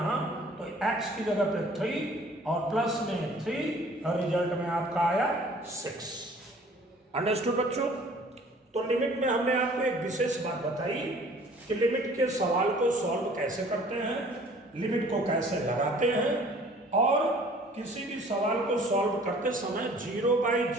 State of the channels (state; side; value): normal; both; correlation 0.52